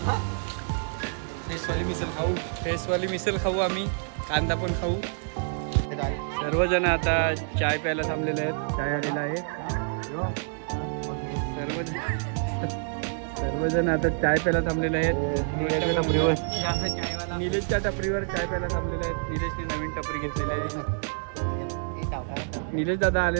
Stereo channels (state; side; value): silent; left; 60 dB below the other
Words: फेसवाली मिसल खाऊ आम्ही, कांदा पण खाऊ। सर्वजण आता चाय प्यायला थांबलेले आहेत, चाय आलेला आहे। सर्वजण आता चाय प्यायला थांबलेले आहेत। निलेशच्या टपरीवर चाय प्यायला थांबलेले आहेत। निलेशने नवीन टपरी घेतलेली आहे। निलेश दादा